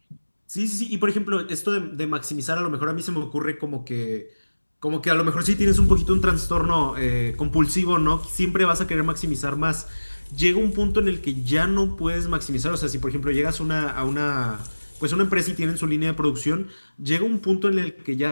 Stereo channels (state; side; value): inverted; both; correlation -1.00